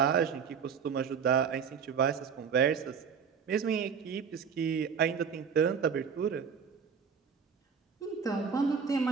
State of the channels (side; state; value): left; quieter; 6.6 dB